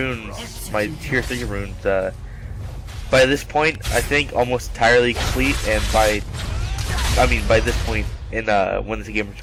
my tier 3 runes, by this point I think almost entirely complete, and by this point in when this game was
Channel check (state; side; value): identical; both; correlation 1.00